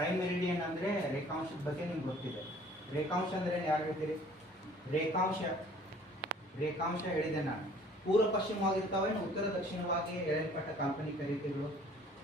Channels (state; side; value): normal; both; correlation 0.53